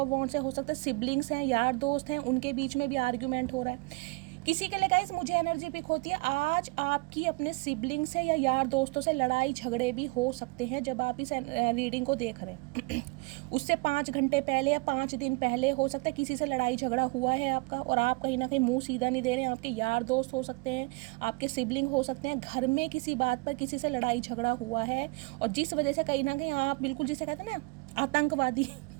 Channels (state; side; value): quieter; left; 26.9 dB